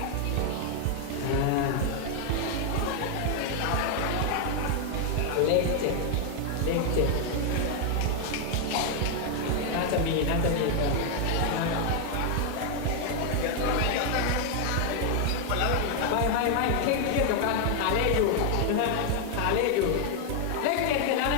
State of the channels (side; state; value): both; different; correlation 0.00